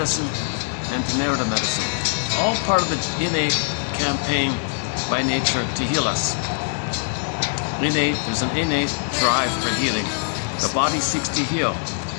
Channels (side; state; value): right; silent; digital silence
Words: and narrative medicine. All part of the innate campaign by nature to heal us. There's an innate drive for healing. The body seeks to heal,